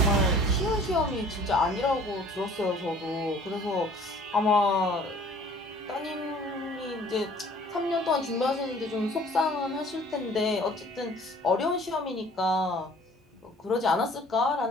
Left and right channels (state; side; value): normal; both; correlation 0.51